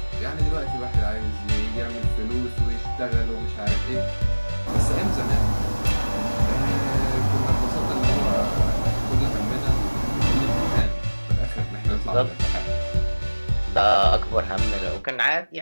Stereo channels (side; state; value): both; inverted; correlation -1.00